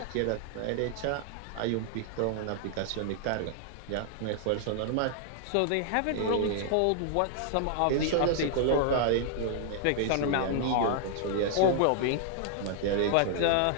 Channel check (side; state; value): both; different; correlation 0.00